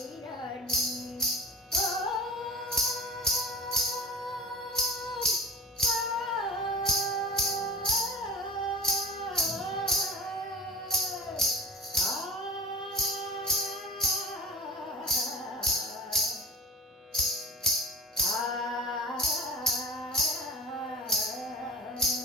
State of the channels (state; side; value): normal; both; correlation 0.37